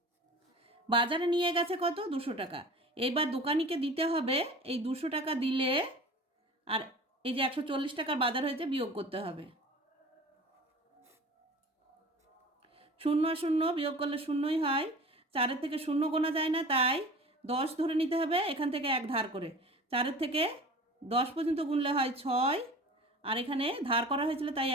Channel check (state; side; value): normal; both; correlation 0.39